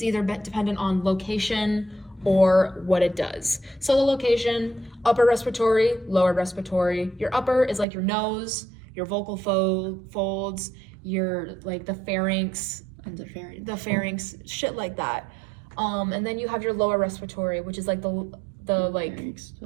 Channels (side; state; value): left; drops out; at 7.9 s